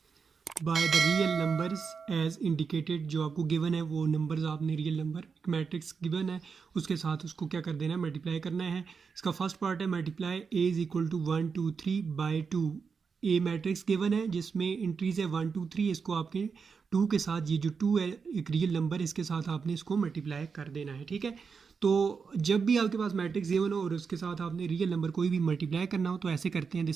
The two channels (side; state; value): left; quieter; 5.6 dB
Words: by the real numbers as indicated. जो आपको गिवन है वो नंबर्स आपने रियल नंबर, एक मैट्रिक्स गिवन है उसके साथ उसको क्या कर देना है, मल्टीप्लाई करना है। इसका फर्स्ट पार्ट है multiply A is equal to 1 2 3/2। A matrix given है जिसमें एंट्रीज है 1 2 3, इसको आपके 2 के साथ, ये जो 2 है एक रियल नंबर, इसके साथ आपने इसको मल्टीप्लाई कर देना है। ठीक है, तो जब भी आपके पास मैट्रिक्स गिवन हो और उसके साथ आपने रियल नंबर कोई भी मल्टीप्लाई करना हो तो ऐसे करते हैं।